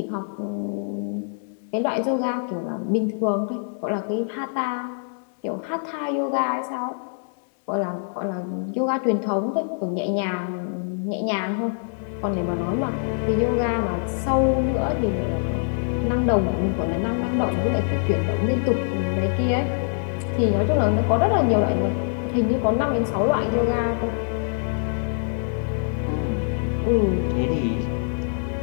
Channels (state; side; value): silent; right; 62 dB below the other